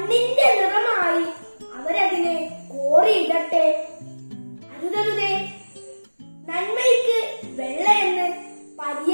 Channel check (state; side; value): inverted; both; correlation -1.00